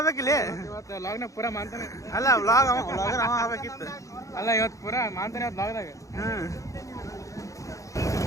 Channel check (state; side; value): late; right; 0.16 ms